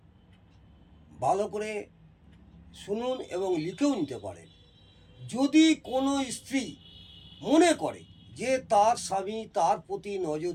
ভালো করে শুনুন এবং লিখেও নিতে পারেন। যদি কোনো স্ত্রী মনে করে যে তার স্বামী তার প্রতি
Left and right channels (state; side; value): identical; both; correlation 1.00